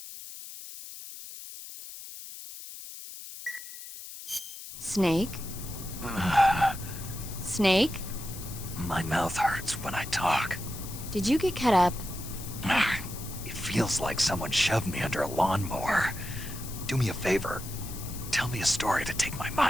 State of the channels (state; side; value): noise; left; hiss, 12 dB below the sound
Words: Snake? Snake? My mouth hurts when I talk. Did you get cut up? It feels like someone shoved me under a lawnmower. Do me a favor. Tell me a story to take my